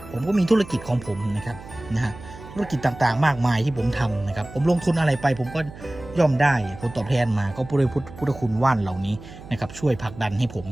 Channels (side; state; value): right; noise; hum, 16 dB below the sound